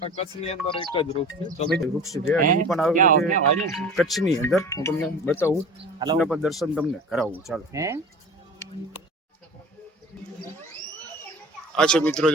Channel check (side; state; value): both; normal; correlation 0.38